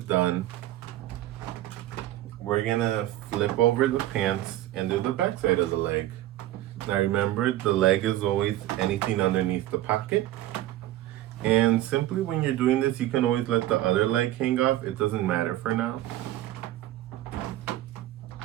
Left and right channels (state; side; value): quieter; left; 14.5 dB